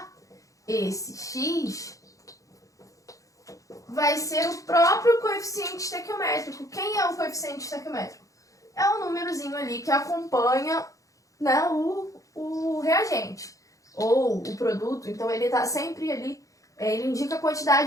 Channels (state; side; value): late; right; 0.16 ms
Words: esse X vai ser o próprio coeficiente estequiométrico. Quem é o coeficiente estequiométrico? É um númerozinho ali que acompanha, né, o reagente ou o produto. Então, ele está sempre ali, ele indica a